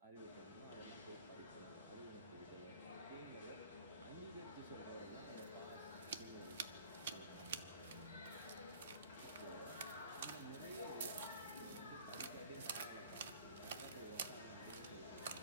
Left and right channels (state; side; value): inverted; both; correlation -0.48